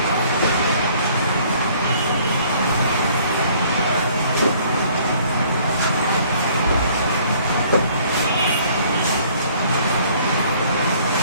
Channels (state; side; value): inverted; both; correlation -0.58